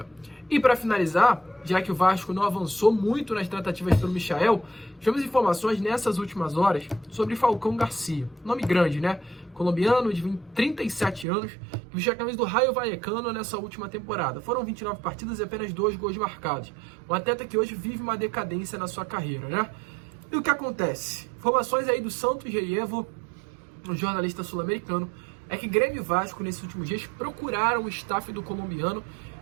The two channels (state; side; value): drops out; left; at 11.2 s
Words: E para finalizar, já que o Vasco não avançou muito nas tratativas pelo Michel, tivemos informações nessas últimas horas sobre Falcão Garcia. Nome grande, né? Colombiano de 37 anos, que vestiu a camisa do Rayo Vallecano nessa última temporada. Foram 29 partidas e apenas 2 gols marcados. Um atleta que hoje vive uma decadência na sua carreira, né? E o que acontece? Informações aí do Santos Reievo, um jornalista sul-americano, é que Grêmio e Vasco, nesses últimos dias, procuraram o staff do colombiano